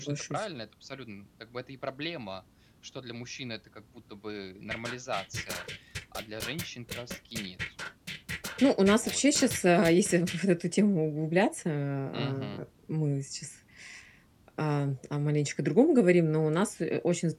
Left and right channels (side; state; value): both; identical; correlation 1.00